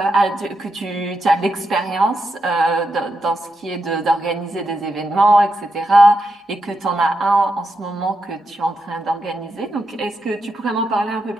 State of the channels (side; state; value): both; normal; correlation 0.84